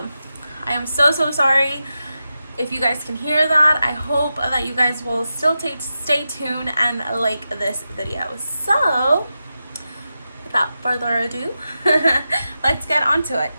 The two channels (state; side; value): inverted; both; correlation -0.90